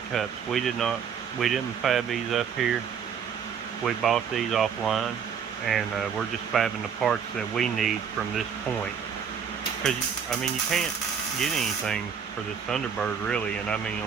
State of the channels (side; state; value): left; quieter; 7.2 dB